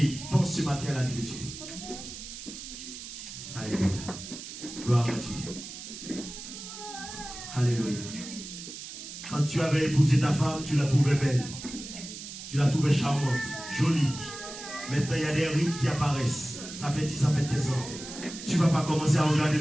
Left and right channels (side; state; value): right; noise; hiss, 11 dB below the sound